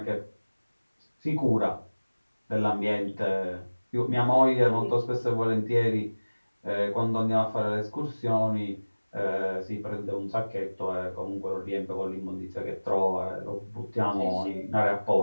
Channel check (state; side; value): inverted; both; correlation -1.00